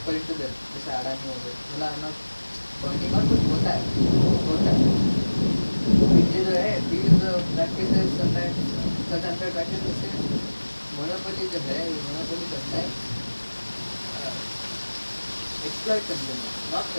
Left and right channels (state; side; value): inverted; both; correlation -1.00